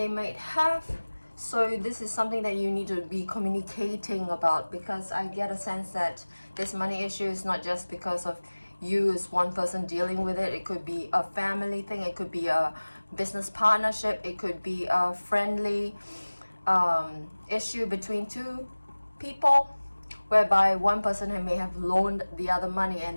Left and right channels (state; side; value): inverted; both; correlation -1.00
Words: might have. So this is something that you need to be communicating about, because I get a sense that this money issue is not just because of you as one person dealing with it. It could be a family thing, it could be a business partnership, it could be a friendly issue between two people, whereby one person may have loaned the other money